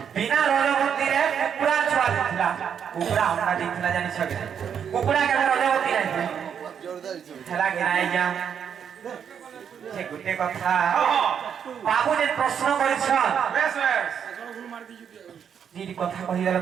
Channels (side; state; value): left; quieter; 7.9 dB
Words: বিনা রজবতীরে কুকুড়া ছুয়া দিছিলা কুকুড়া অন্ডা দিছিলা জানিছ কি কুকুড়া কেন রজবতী নাই হেলা কি নাই আজ্ঞা যে গোটে কথা বাবু যে প্রশ্ন করেছন বেশ বেশ যদি কথা কহিদেলে